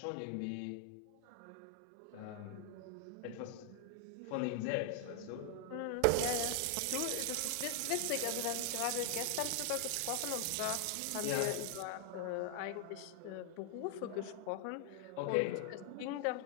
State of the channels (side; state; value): both; different; correlation 0.00